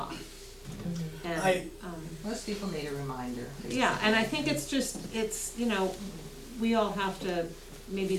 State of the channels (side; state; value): both; identical; correlation 1.00